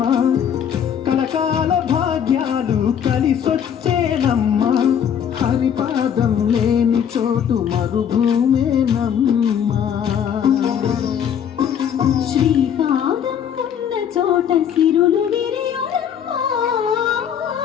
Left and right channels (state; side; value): quieter; right; 8.6 dB